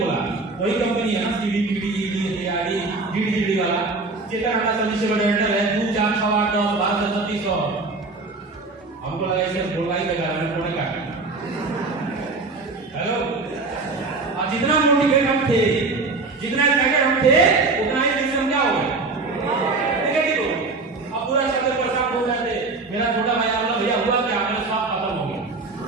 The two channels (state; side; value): quieter; left; 3.7 dB